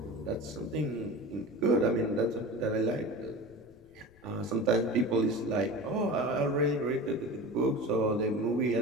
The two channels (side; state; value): left; noise; rumble, 27 dB below the sound